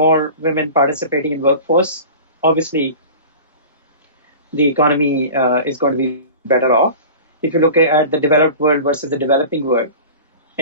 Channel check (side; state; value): both; inverted; correlation -0.37